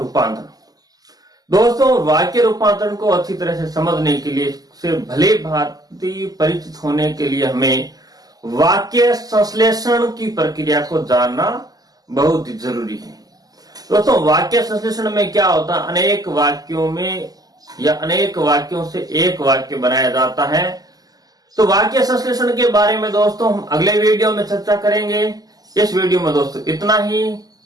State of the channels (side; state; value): left; late; 0.18 ms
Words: दोस्तों वाक्य रूपांतरण को अच्छी तरह से समझने के लिए, से भले भांति परिचित होने के लिए हमें वाक्य संश्लेषण की प्रक्रिया को जानना बहुत जरूरी है। दोस्तों वाक्य संश्लेषण में क्या होता है, अनेक वाक्यों में या अनेक वाक्यों से एक वाक्य बनाया जाता है। तो वाक्य संश्लेषण के बारे में दोस्तों हम अगले वीडियो में चर्चा करेंगे। इस वीडियो में दोस्तों इतना ही।